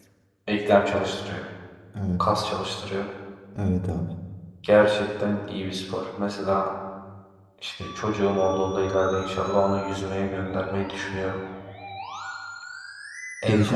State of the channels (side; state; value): both; identical; correlation 1.00